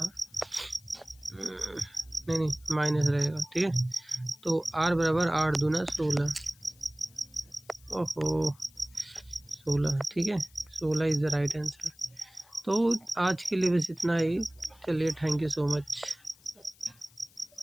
नहीं माइनस रहेगा, ठीक है। तो r बराबर 8 दूना 16, ओहो 16, ठीक है 16 इज़ द राइट आंसर। तो आज के लिए बस इतना ही। चलिए, थैंक यू सो मच।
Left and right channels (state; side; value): noise; left; hiss, 27 dB below the sound